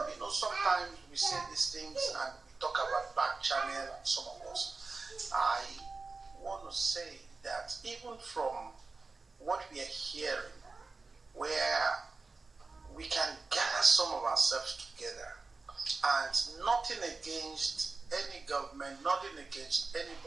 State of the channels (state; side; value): quieter; left; 3.9 dB